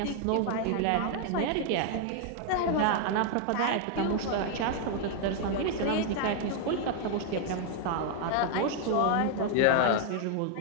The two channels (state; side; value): different; both; correlation 0.00